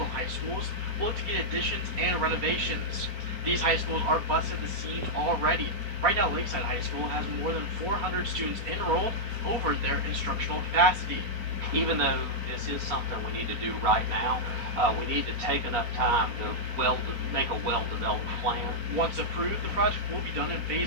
High Schools, will look to get additions and renovations. These high schools are busting the seams already. Right now, Lakeside High School has more than 400 students enrolled over their instructional capacity. Even though this is something we need to do right now, we need to take enough time to make a well-developed plan. Once approved, the project will be done in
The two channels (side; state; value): left; late; 4.1 ms